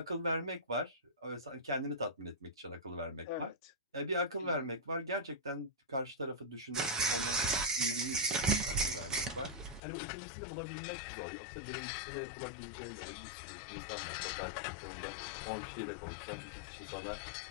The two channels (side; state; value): right; drops out; at 9.8 s